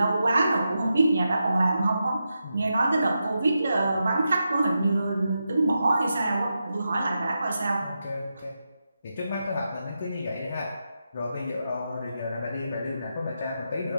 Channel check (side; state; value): both; inverted; correlation -0.88